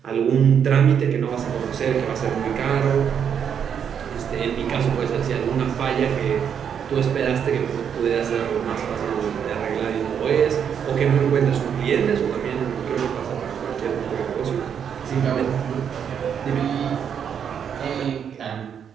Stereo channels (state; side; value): quieter; left; 7.9 dB